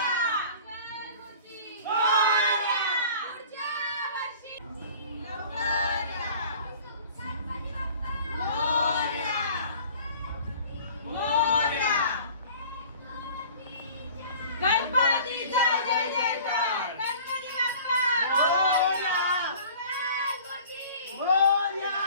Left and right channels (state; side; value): inverted; both; correlation -0.46